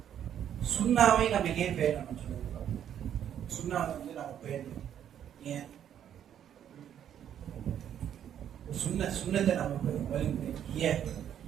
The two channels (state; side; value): quieter; left; 9.8 dB